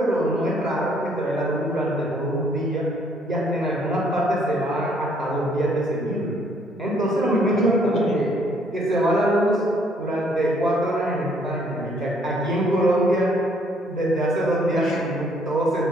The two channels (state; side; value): normal; both; correlation 0.65